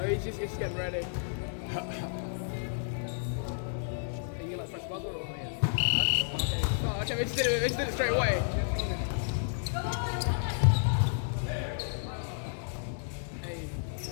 he's just getting ready. Hey, you like press buzzer or yeah? Oh, okay, we just did it straight away. Hey.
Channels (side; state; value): right; silent; digital silence